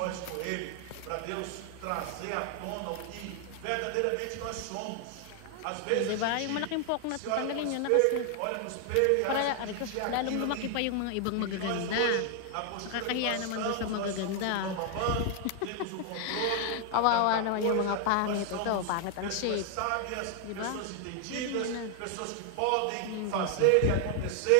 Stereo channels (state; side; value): different; both; correlation 0.00